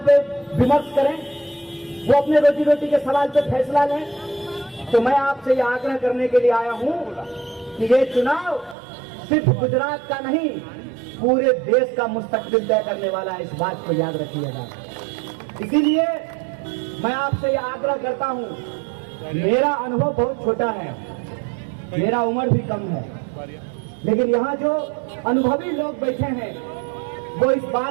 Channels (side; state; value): left; drops out; at 8.8 s